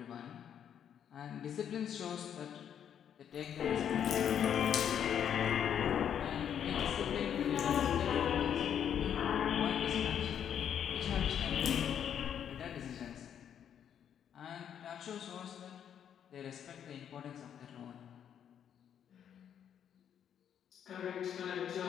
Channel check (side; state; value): right; quieter; 9.0 dB